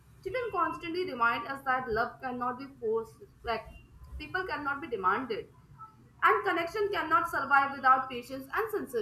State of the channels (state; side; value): identical; both; correlation 1.00